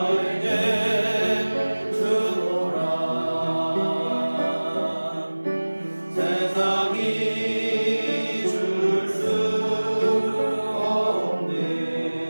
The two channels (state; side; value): inverted; both; correlation -1.00